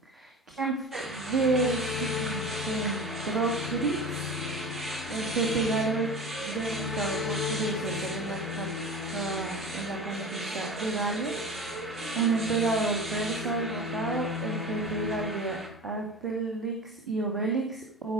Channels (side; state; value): both; normal; correlation 0.33